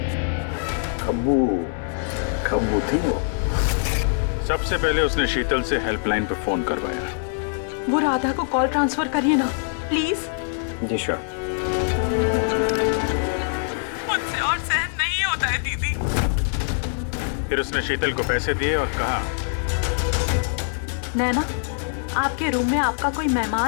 खब्बू थी वो। सबसे पहले उसने शीतल से हेल्पलाइन पर फोन करवाया। वो राधा को कॉल ट्रांसफर करिए ना प्लीज। Ji sure. मुझसे और सहन नहीं होता है दीदी। फिर उसने शीतल को पैसे दिए और कहा, नैना, आपके रूम में आपका कोई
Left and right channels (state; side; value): silent; right; 63 dB below the other